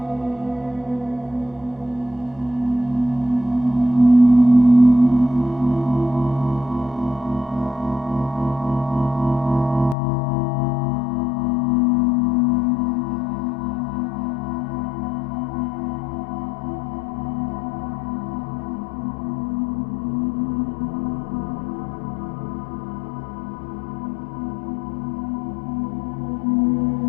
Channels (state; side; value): drops out; right; at 10.0 s